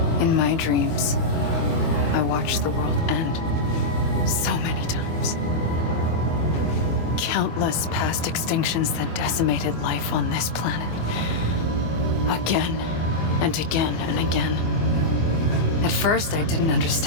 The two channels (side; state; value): right; late; 25 ms